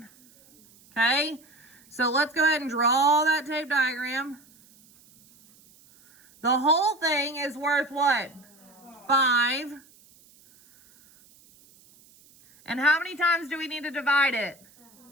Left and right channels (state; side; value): noise; right; hiss, 28 dB below the sound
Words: Okay. So let's go ahead and draw that tape diagram. The whole thing is worth what? 5. And how many times do we need to divide it?